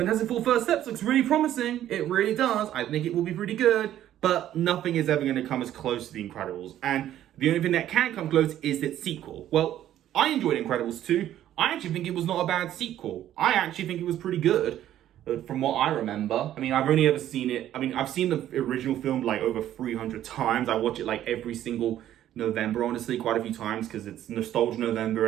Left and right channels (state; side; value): quieter; left; 12.0 dB